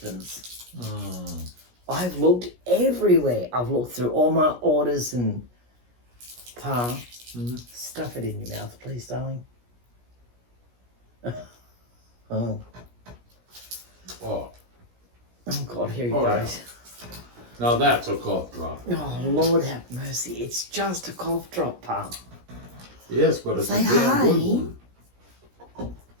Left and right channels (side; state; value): left; late; 17 ms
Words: I've looked everywhere. I've looked through all my orders and stuff it in your mouth, please, darling. Oh. Oh. Oh God, here he Oh, goes. Yeah. Now that's a cough drop. Oh Lord have mercy, it's just a cough drop, Pa. Yes, but it's Say a damn hi. good one.